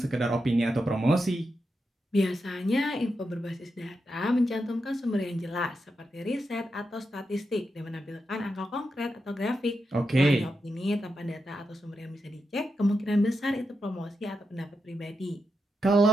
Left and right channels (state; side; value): normal; both; correlation 0.86